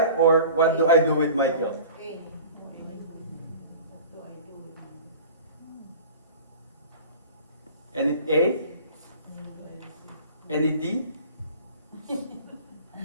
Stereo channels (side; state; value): both; inverted; correlation -0.41